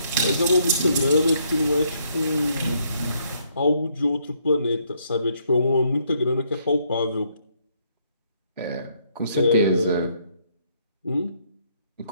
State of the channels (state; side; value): inverted; both; correlation -0.70